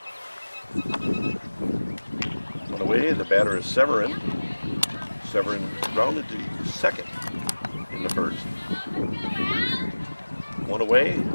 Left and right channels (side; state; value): both; inverted; correlation -1.00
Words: On the way, the batter is Severin. Severin grounded to second in the first. One away,